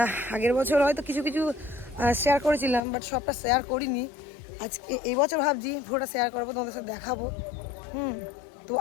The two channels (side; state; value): right; drops out; at 2.8 s